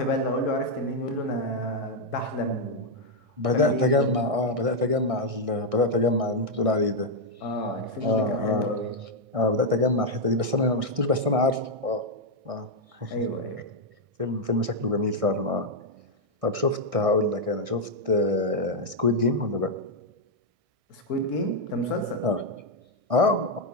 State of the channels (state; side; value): late; left; 1.6 ms